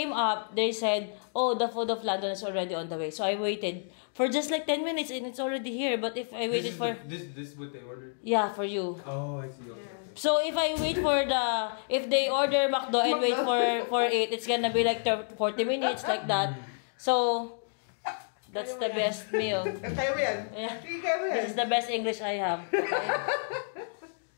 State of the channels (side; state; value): right; silent; digital silence